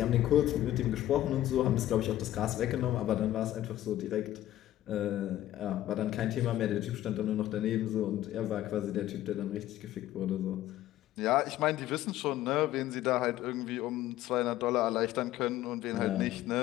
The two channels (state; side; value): quieter; right; 13.7 dB